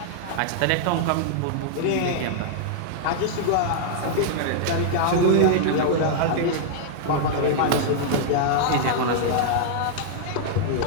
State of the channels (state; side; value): different; both; correlation -0.01